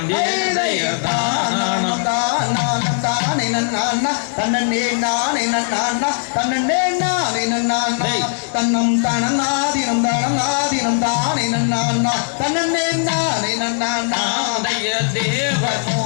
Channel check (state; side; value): silent; right; digital silence